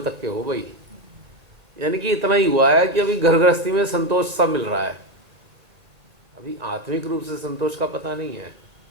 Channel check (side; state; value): left; late; 1.8 ms